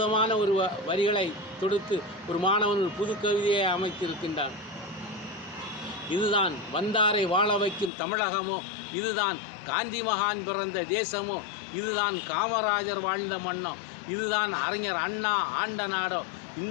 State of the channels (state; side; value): drops out; right; at 7.9 s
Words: ஒரு வரிகளை தொடுத்து ஒரு மாணவன் ஒரு புது கவிதையை அமைத்திருக்கின்றான். இதுதான் வந்தாரை வாழ வைக்கும் தமிழகமோ, இதுதான் காந்தி மகான் பிறந்த தேசமோ, இதுதான் காமராஜர் வாழ்ந்த மண்ணோ, இதுதான் அறிஞர் அண்ணா ஆண்ட நாடோ,